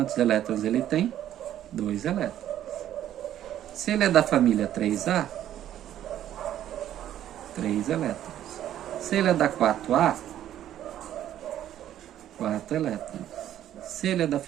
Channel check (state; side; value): quieter; left; 11.6 dB